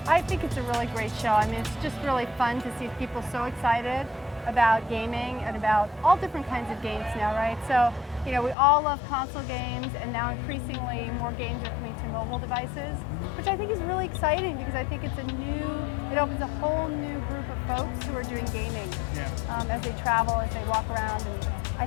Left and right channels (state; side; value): drops out; right; at 8.6 s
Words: I think it's a really great show. I mean, it's just really fun to see people so excited about gaming and about all different kinds of games now, right? So, you know, we all love console games, and now increasingly more games are coming to mobile devices, which I think is really exciting because I think it opens a whole new group of folks who are doing gaming as they travel, as they walk around, and I